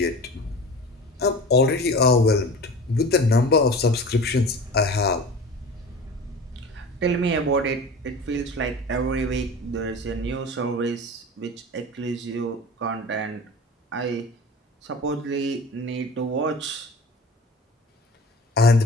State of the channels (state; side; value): normal; both; correlation 0.36